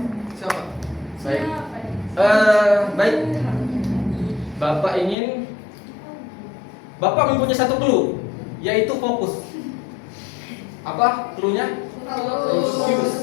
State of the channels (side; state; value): right; drops out; at 5.2 s